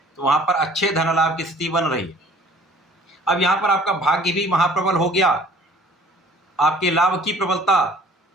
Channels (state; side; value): normal; both; correlation 0.53